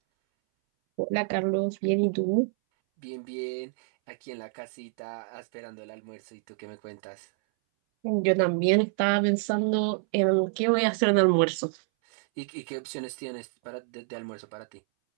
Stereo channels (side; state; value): left; silent; 59 dB below the other